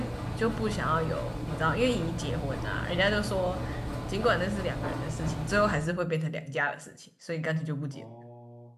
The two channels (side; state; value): both; identical; correlation 1.00